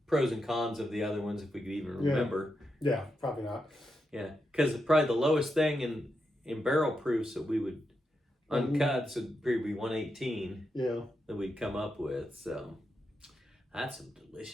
pros and cons of the other ones if we could even remember. Yeah, probably not. Yeah, because probably the lowest thing in barrel proofs that we would uncut would probably be 118. Yeah, that we'd come up with. So that's some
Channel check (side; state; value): both; normal; correlation 0.85